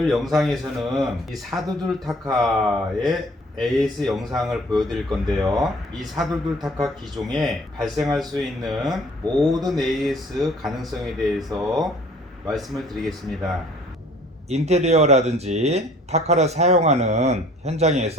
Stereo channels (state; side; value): normal; both; correlation 0.54